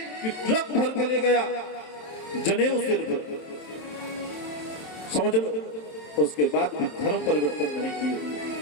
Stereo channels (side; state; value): right; late; 27 ms